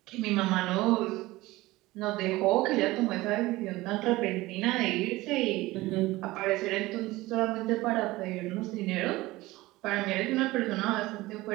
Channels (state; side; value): quieter; left; 19.1 dB